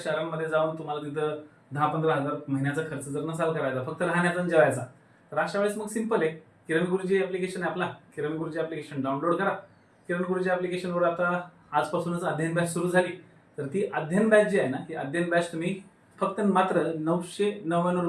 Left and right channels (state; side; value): identical; both; correlation 1.00